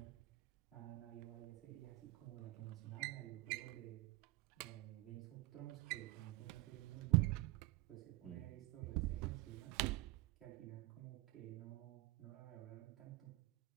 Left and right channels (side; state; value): left; quieter; 21.0 dB